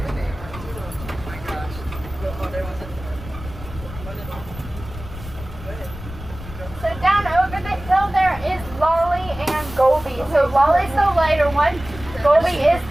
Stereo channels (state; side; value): noise; left; rumble, 13 dB below the sound